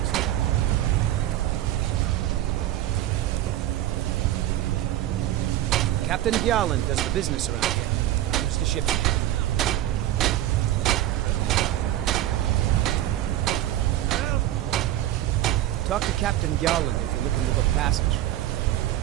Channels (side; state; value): left; quieter; 13.6 dB